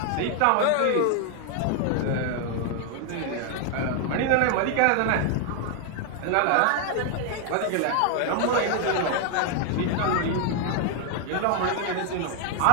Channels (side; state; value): both; different; correlation 0.00